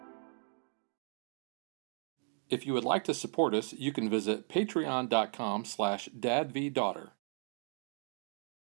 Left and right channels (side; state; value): left; silent; 54 dB below the other